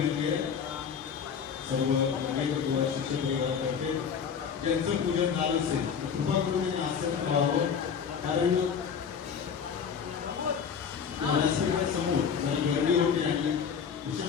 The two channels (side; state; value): right; quieter; 6.9 dB